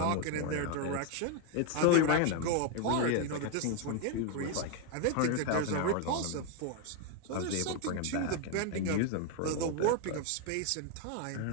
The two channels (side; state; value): both; different; correlation 0.01